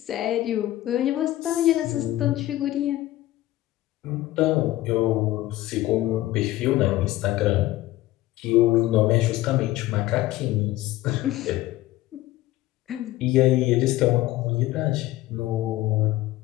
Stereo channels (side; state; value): right; quieter; 16.1 dB